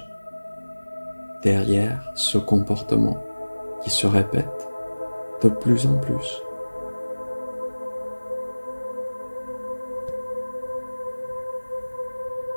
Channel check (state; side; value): inverted; both; correlation -1.00